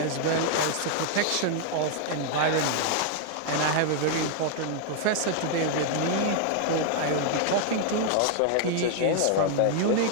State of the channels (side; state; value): both; different; correlation 0.00